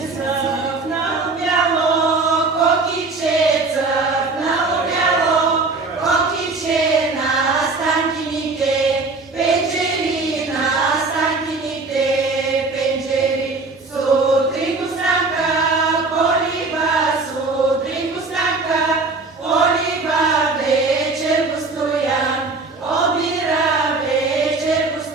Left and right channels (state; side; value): quieter; left; 3.8 dB